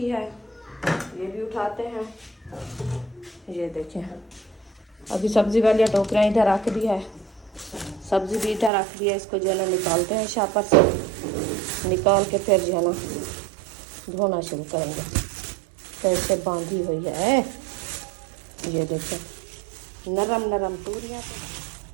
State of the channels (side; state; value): left; drops out; at 8.7 s